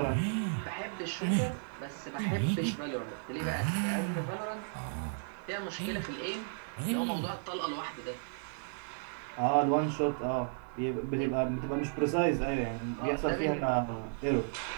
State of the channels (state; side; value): silent; left; digital silence